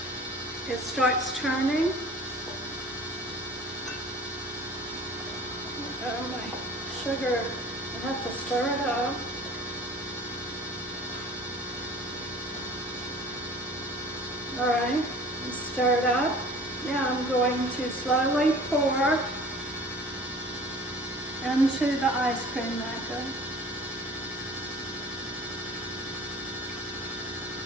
It starts turning. Oh, my sugar, I have to stir it up. All right, stir it up. Now I'm going to slowly pour into the ice cream maker.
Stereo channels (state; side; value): normal; both; correlation 0.44